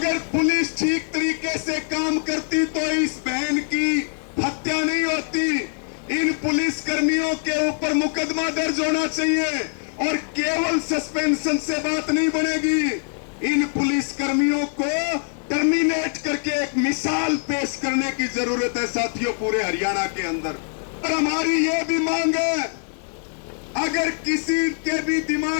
पुलिस ठीक तरीके से काम करती तो इस बहन की हत्या नहीं होती। इन पुलिस कर्मियों के ऊपर मुकदमा दर्ज होना चाहिए और केवल सस्पेंशन से बात नहीं बनेगी। इन पुलिस कर्मियों को टर्मिनेट करके एक मिसाल पेश करने की जरूरत है साथियों, पूरे हरियाणा के अंदर। और हमारी ये भी मांग है, अगर किसी के भी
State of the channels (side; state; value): right; silent; 57 dB below the other